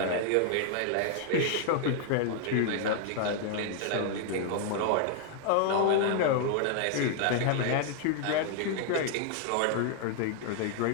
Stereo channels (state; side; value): different; both; correlation 0.00